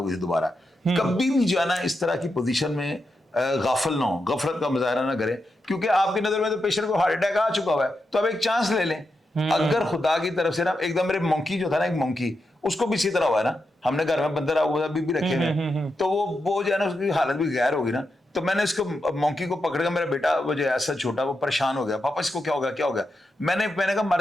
गई दोबारा। कभी भी जो है ना इस तरह की पोजीशन में गाफिल ना हो, गफलत का मुजाहरा ना करें, क्योंकि आपकी नजर में तो पेशेंट को हार्ट अटैक आ चुका हुआ है, तो आप एक चांस ले लें। अगर खुदा की तरफ से ना एकदम, मेरे मंकी जो था ना, एक मंकी, उसको भी इसी तरह हुआ है ना, हमने घर में बंदर अभी भी रखे हैं, तो वो जो है ना उसकी हालत भी गैर होगी ना। तो मैंने इसको मंकी को पकड़ कर, मेरा बेटा वो जो ऐसा छोटा वो परेशान हो गया, पापा इसको क्या हो गया क्या हो गया। मैंने कहा मर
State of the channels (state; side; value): normal; both; correlation 0.86